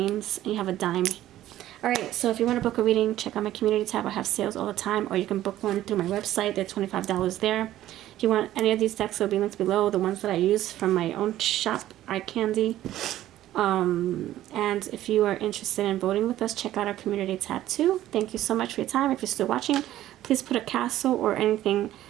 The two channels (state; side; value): quieter; left; 13.6 dB